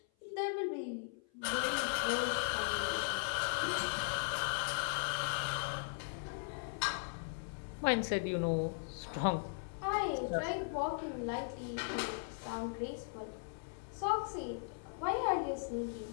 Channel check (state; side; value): silent; right; 52 dB below the other